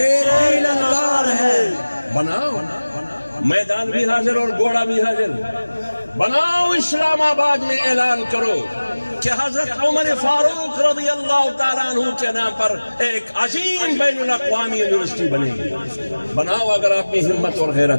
کی للکار ہے. بناؤ. میدان بھی حاضر اور گھوڑا بھی حاضر. بناؤ. اسلام آباد میں اعلان کرو کہ حضرت عمر فاروق رضی اللہ تعالیٰ عنہ کے نام پر ایک عظیم بین الاقوامی یونیورسٹی بنے گی. بناؤ اگر آپ کی ہمت اور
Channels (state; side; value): inverted; both; correlation -1.00